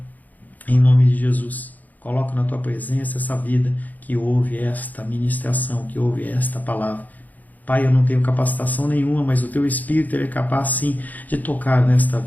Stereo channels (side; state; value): right; late; 0.081 ms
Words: em nome de Jesus, coloco na tua presença essa vida que ouve esta ministração, que ouve esta palavra. Pai, eu não tenho capacitação nenhuma, mas o teu Espírito ele é capaz sim de tocar nesta